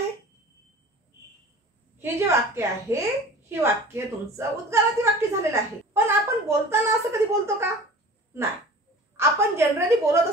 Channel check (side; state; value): both; normal; correlation 0.41